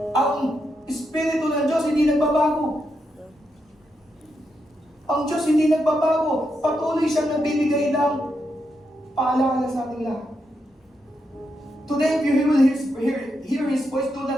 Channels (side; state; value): both; normal; correlation 0.83